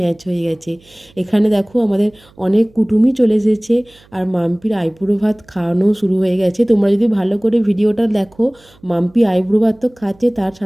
হয়ে গেছে। এখানে দেখো আমাদের অনেক কুটুমই চলে এসেছে, আর মাম্পির আইবুড়ো ভাত খাওয়ানো শুরু হয়ে গেছে। তোমরা যদি ভালো করে ভিডিওটা দেখো, মাম্পি আইবুড়ো ভাত তো খাচ্ছে, তার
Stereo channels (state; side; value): noise; right; hum, 29 dB below the sound